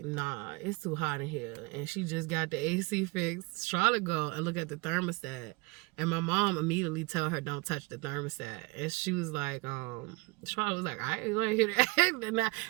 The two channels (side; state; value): left; quieter; 25.9 dB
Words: nah, it's too hot in here. And she just got the AC fixed. Charlotte go and look at the thermostat. And my mom immediately tell her, don't touch the thermostat. And she was like, Charlotte was like, I ain't gonna hear that.